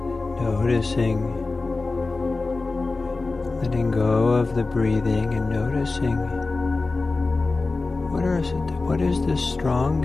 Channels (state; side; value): quieter; right; 3.6 dB